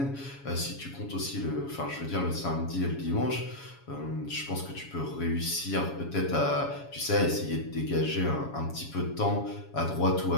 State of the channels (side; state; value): right; late; 7.2 ms